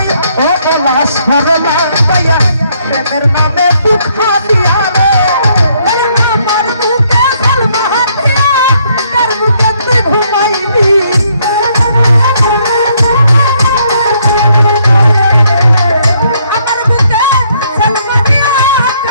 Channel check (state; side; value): inverted; both; correlation -0.70